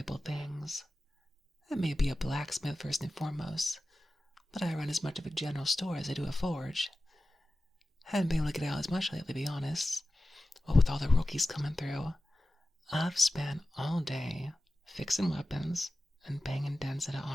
things. I may be a blacksmith first and foremost, but I run as much of a general store as I do a forge. Haven't been able to get out as much lately, to be honest. What with all the rookies coming through, I've spent all day fixing weapons and banging dents into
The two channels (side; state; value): both; normal; correlation 0.94